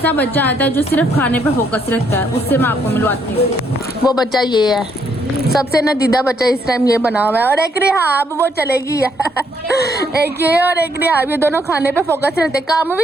बच्चा आता है जो सिर्फ खाने पे फोकस रखता है, उससे मैं आपको मिलवाती हूँ। वो बच्चा ये है, सबसे नदीदा बच्चा इस टाइम ये बना हुआ है। और एक रिहाब वो चलेगी एक ये और एक रिहाब, ये दोनों खाने पे फोकस रहते। काम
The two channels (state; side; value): normal; both; correlation 0.71